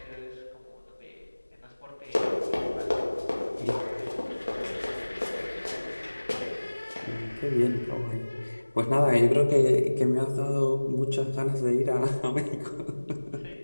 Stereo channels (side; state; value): both; inverted; correlation -1.00